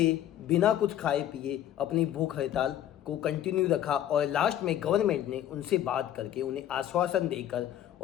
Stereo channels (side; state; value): right; quieter; 11.5 dB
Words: बिना कुछ खाए पिए अपनी भूख हड़ताल को कंटिन्यू रखा और लास्ट में गवर्नमेंट ने उनसे बात करके उन्हें आश्वासन देकर